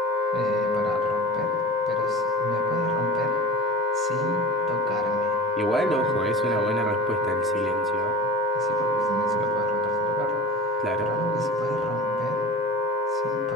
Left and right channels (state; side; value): normal; both; correlation 0.34